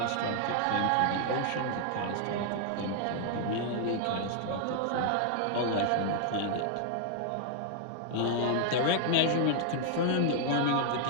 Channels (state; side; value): different; both; correlation 0.00